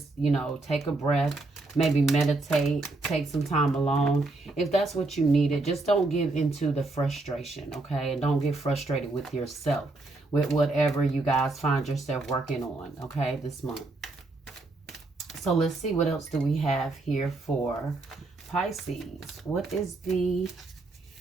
take a breath, maybe meditate, take some time alone. If that's what you needed, just don't give into the frustration, okay? And don't get frustrated with yourself, with whatever you guys find yourself working on, okay, this month. So let's see, what else do we have here for Pisces? What is the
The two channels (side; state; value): left; quieter; 3.2 dB